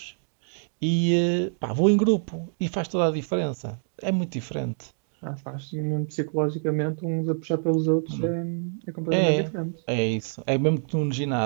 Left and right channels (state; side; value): silent; left; 61 dB below the other